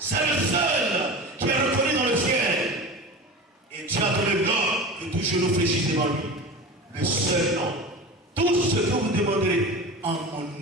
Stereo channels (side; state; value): both; normal; correlation 0.31